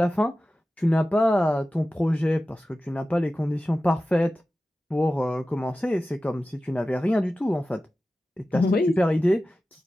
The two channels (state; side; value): normal; both; correlation 0.95